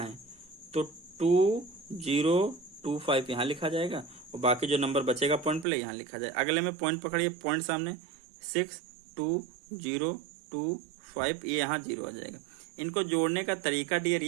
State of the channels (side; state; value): left; drops out; at 5.7 s